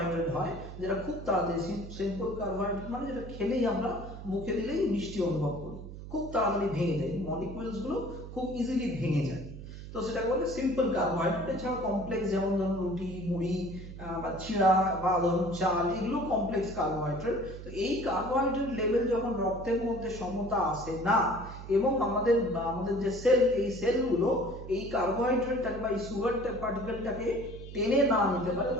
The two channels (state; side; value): noise; right; hum, 12 dB below the sound